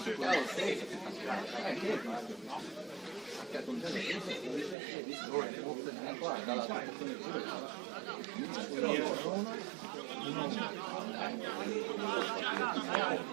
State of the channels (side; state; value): left; drops out; at 4.8 s